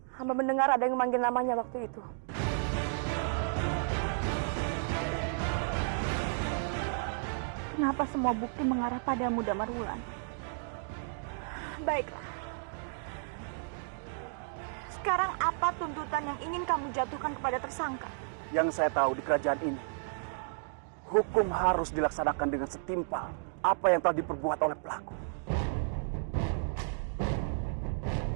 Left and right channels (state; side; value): silent; left; digital silence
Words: Hamba mendengar ada yang memanggil namanya waktu itu. Kenapa semua bukti mengarah padamu, Damarwulan? Baiklah. Sekarang apa tuntutan yang ingin kamu jatuhkan kepada tersangka? Yang saya tahu di kerajaan ini, hukum harus dilaksanakan dengan setimpal apa yang telah diperbuat oleh pelaku.